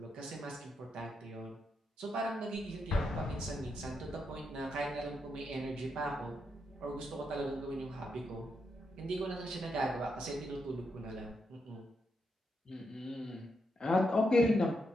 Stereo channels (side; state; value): both; normal; correlation 0.82